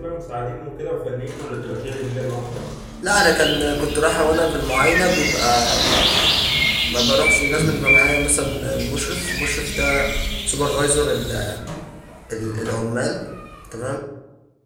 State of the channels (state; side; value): identical; both; correlation 1.00